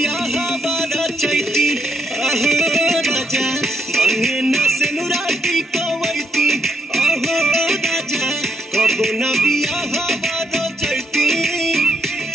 बारा चैती आहो राजा मांगे न सेनुराटी कवैती आहो राजा कबो न बियाह बारा चैती।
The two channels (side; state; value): both; normal; correlation 0.76